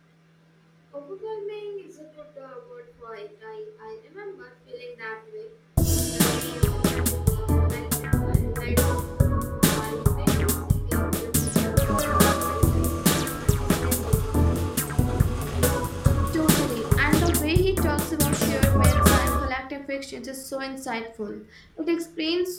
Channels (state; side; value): identical; both; correlation 1.00